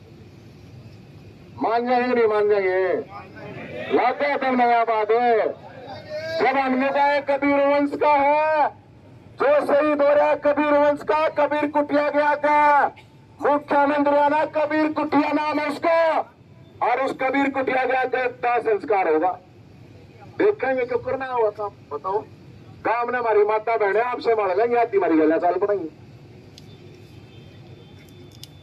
जाएंगे नहीं मान जाएंगे लाते तो नया बात है। जब हमने कहा कबीर वंश का है जो शहीद हो रहा है कबीर वंश का कबीर कुटिया गया का मुख्यमंत्री आना कबीर कुटिया नाम है उसका और उस कबीर कुटिया गया का संस्कार होगा। देखेंगे क्यों करना हुआ काम बताओ। काम ने हमारी माता बहने आपसे मार लेंगे आती हमारी गला चाल पड़ेंगे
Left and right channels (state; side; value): identical; both; correlation 1.00